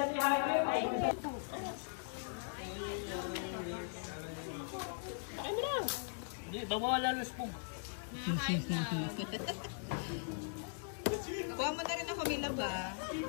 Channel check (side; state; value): right; silent; digital silence